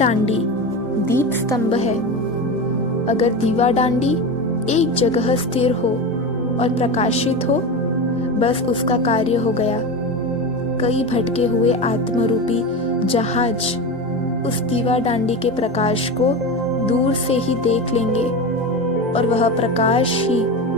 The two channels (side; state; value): both; normal; correlation 0.22